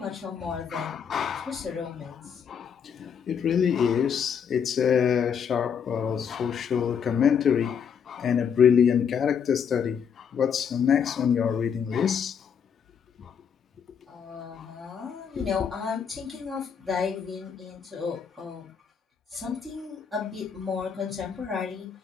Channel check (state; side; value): quieter; right; 7.3 dB